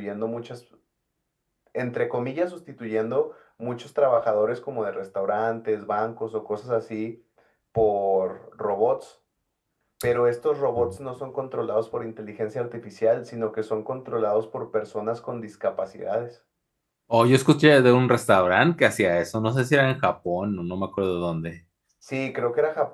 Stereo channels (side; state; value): both; identical; correlation 1.00